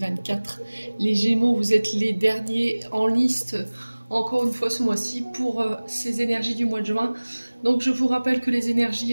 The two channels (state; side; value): inverted; both; correlation -1.00